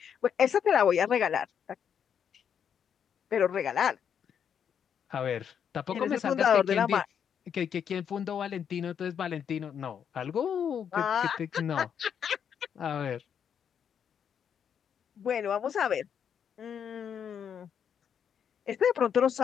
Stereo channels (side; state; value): right; quieter; 8.0 dB